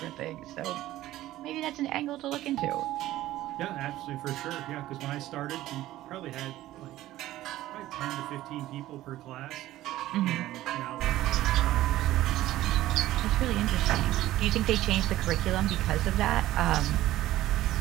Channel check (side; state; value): left; quieter; 15.1 dB